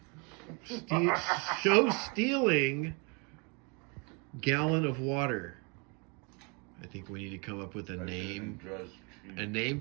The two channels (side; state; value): left; quieter; 32.4 dB